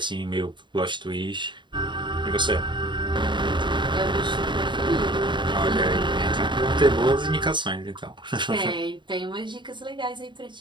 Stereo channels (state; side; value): late; left; 0.23 ms